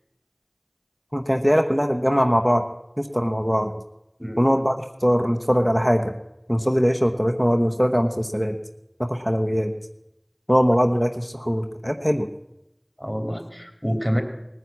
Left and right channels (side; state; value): both; identical; correlation 1.00